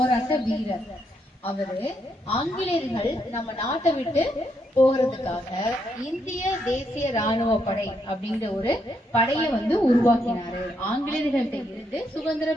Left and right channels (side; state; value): both; normal; correlation 0.77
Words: வீரர். அவரு ஆங்கிலேயர்கள் நம்ம நாட்டை விட்டு போகிறதுக்காக இந்திய தேசிய ராணுவ படை அப்படிங்கிற ஒரு படையை உருவாக்கினாரு. ஆங்கிலேயர்கள்ட்ட இருந்து